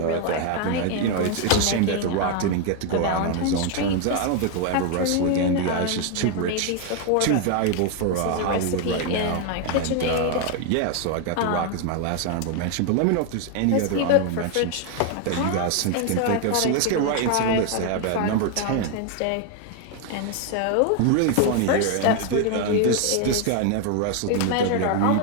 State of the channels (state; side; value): different; both; correlation 0.01